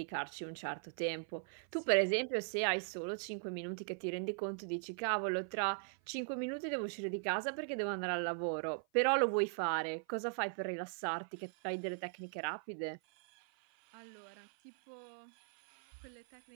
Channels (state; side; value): silent; left; 52 dB below the other